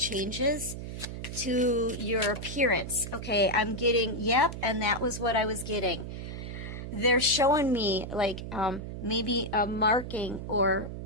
to your appearance. Okay, I'm getting, yep, and that was what I was getting. they're showing me like maybe a marking or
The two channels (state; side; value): noise; right; hum, 8 dB below the sound